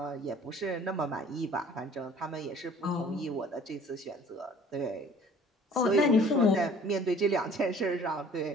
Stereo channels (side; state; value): both; normal; correlation 0.52